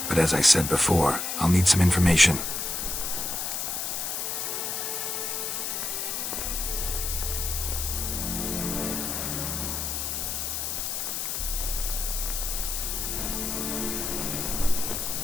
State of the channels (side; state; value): left; noise; hiss, 2 dB below the sound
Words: But as I said before, I'll need some information.